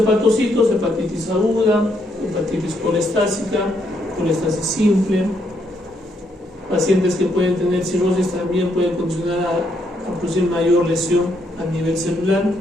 hepatitis aguda, hepatitis colestásica, colestasis simple. Pacientes que pueden tener cirrosis también pueden condicionar a producir mayor lesión a nivel celular.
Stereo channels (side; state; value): both; normal; correlation 0.75